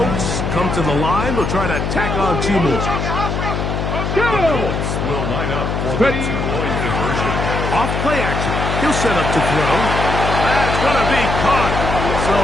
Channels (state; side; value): noise; left; hum, 2 dB below the sound